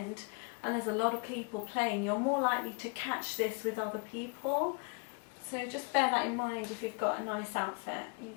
and there's a lot of people playing, you're more likely to catch this with other people. So just bear that in mind if you've got a nice outfit. You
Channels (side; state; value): right; quieter; 35.9 dB